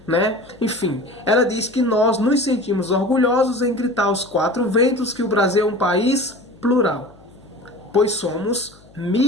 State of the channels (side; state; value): left; noise; hum, 27 dB below the sound